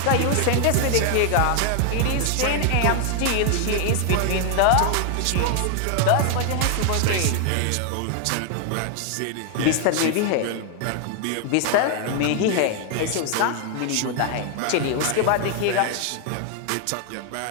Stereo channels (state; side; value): different; both; correlation 0.00